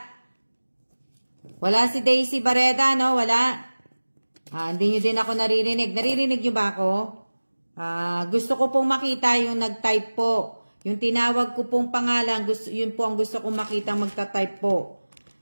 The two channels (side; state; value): both; inverted; correlation -1.00